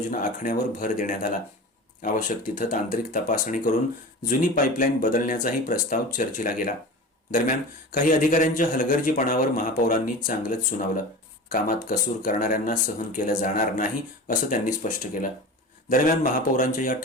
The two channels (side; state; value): both; normal; correlation 0.33